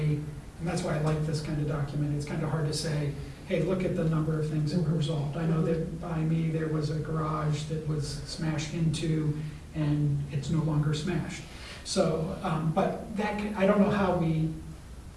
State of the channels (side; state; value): both; identical; correlation 1.00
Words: and that's why I like this kind of document, it's kind of hard to say, hey, look at the number of things that were resolved. I know that by me, there was a garage that was smashed into, and it's no longer smashed. So, but I don't know how we